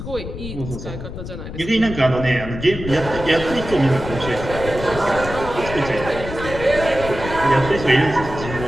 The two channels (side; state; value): left; noise; rumble, 9 dB below the sound